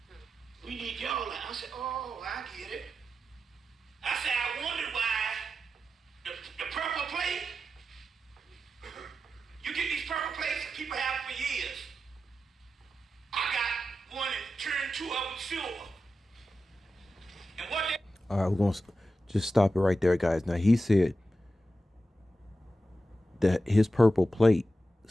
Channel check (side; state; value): both; normal; correlation 0.91